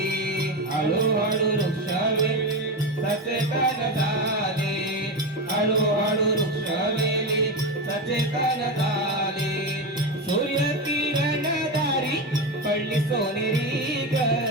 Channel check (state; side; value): normal; both; correlation 0.17